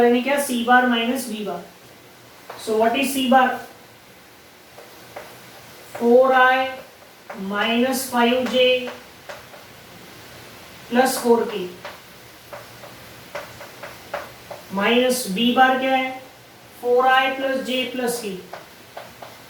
यानी क्या C bar minus B bar. So what is C bar 4i minus 5j plus 4k minus B bar क्या है 4i plus j plus k।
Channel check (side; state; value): both; identical; correlation 1.00